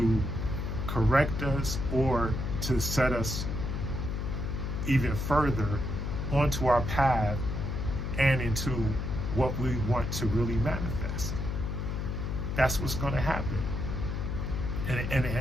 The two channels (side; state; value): left; noise; hum, 2 dB below the sound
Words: correct us or to set us even further onto our path and into what we want to really manifest. That's what's going to happen.